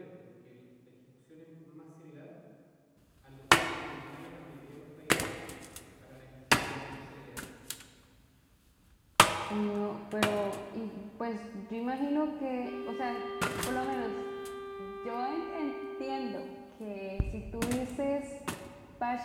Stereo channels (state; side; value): identical; both; correlation 1.00